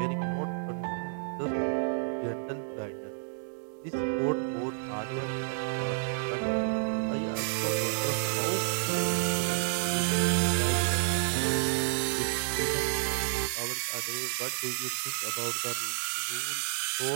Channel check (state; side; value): silent; left; 58 dB below the other